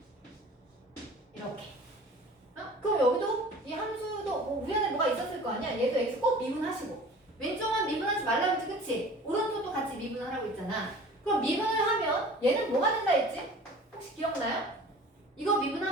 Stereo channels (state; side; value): normal; both; correlation 0.44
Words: 이렇게. 그럼 여기도 이 함수도 뭐 우연에 뭐가 있었을 거 아니야? 얘도 x 꼭 미분하시고 왼쪽만 미분하지 말라고 했지, 그치? 오른쪽도 같이 미분하라고 했잖아. 그럼 미분을 하면 얘는 뭐가 된다 했지? 혹시 기억나요? 이거